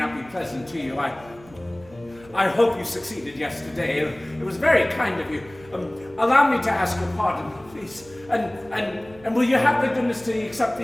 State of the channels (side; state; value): right; noise; hum, 23 dB below the sound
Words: be pleasant to you. I hope you succeeded yesterday. It was very kind of you. Allow me to ask your pardon, please. And will you have the goodness to accept